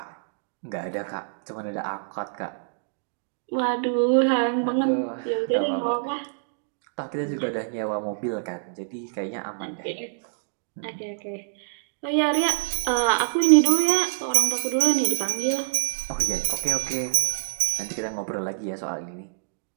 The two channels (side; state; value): left; silent; digital silence